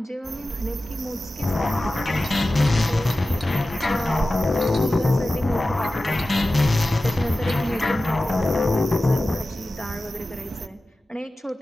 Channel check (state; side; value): normal; both; correlation 0.95